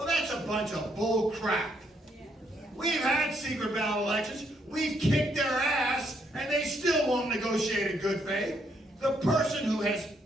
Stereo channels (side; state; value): both; normal; correlation 0.73